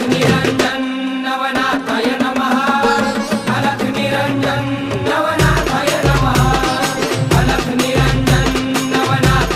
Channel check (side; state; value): both; identical; correlation 1.00